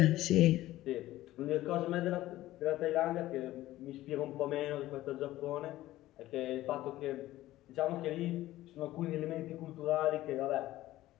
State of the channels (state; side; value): quieter; right; 15.6 dB